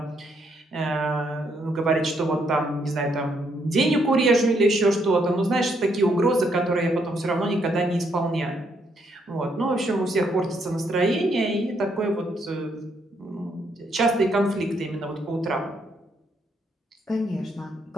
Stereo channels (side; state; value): both; normal; correlation 0.74